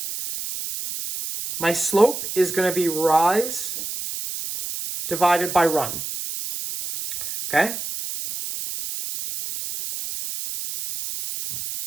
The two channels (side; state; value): right; noise; hiss, 7 dB below the sound